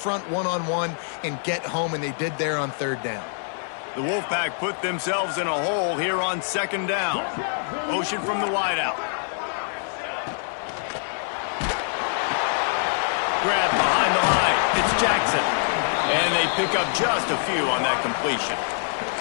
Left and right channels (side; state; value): right; silent; digital silence